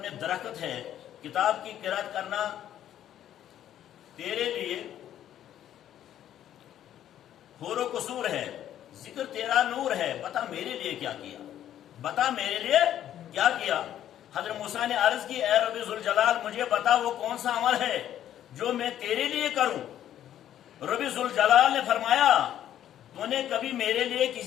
میں درخت ہے، کتاب کی قرأت کرنا تیرے لیے حور و قصور ہے، ذکر تیرا نور ہے، بتا میرے لیے کیا کیا، بتا میرے لیے کیا کیا۔ حضرت موسیٰ نے عرض کی، اے رب ذوالجلال مجھے بتا وہ کون سا عمل ہے جو میں تیرے لیے کروں۔ رب ذوالجلال نے فرمایا، تو نے کبھی میرے لیے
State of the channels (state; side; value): quieter; right; 11.2 dB